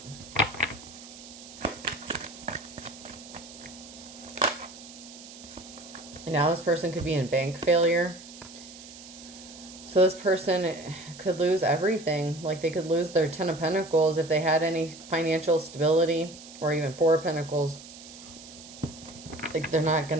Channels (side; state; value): right; noise; hiss, 17 dB below the sound